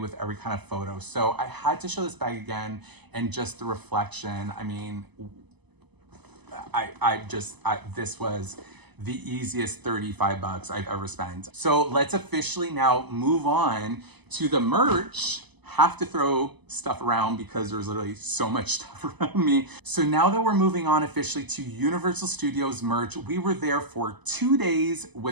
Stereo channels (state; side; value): late; left; 0.99 ms